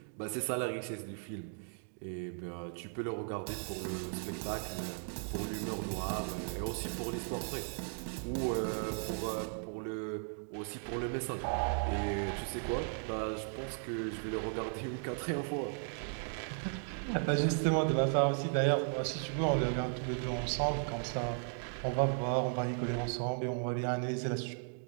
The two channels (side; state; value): left; silent; 54 dB below the other